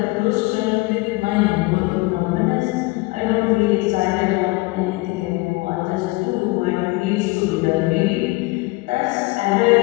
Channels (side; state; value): right; quieter; 23.6 dB